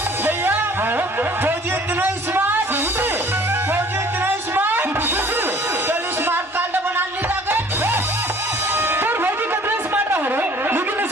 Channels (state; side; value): normal; both; correlation 0.52